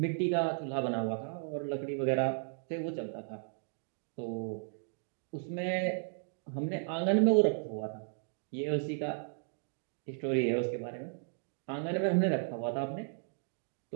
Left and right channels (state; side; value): silent; left; digital silence